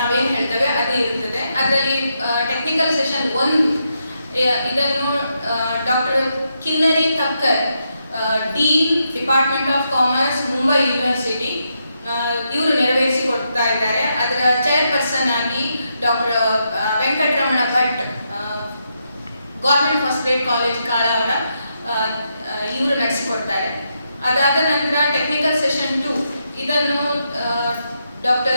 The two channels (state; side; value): inverted; both; correlation -0.82